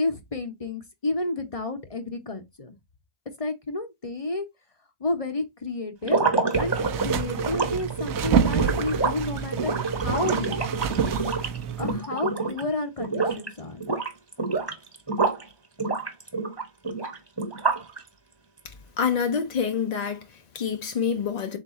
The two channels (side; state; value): right; late; 1.9 ms